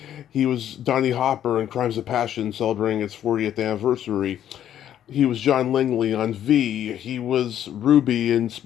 He was Donnie Hopper in Crimes of Passion celebrating its 40th anniversary. He was John Langley on V. He was Ruby in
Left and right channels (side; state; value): right; quieter; 10.7 dB